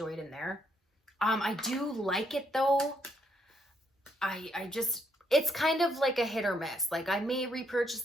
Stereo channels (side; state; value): both; normal; correlation 0.73